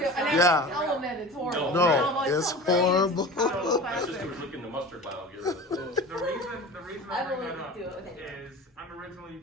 too. And I Yeah. can tell them that it's horrible. No, I'm like, it's so great. horrible. Chicago My sister classic. was looking the mustard bottle. Get rid of it. The reason I I will bring that up do it with anyone. is I'm originally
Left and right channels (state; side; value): normal; both; correlation 0.36